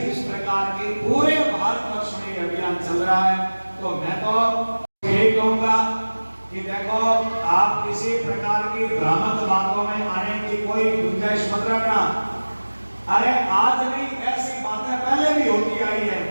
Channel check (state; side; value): inverted; both; correlation -1.00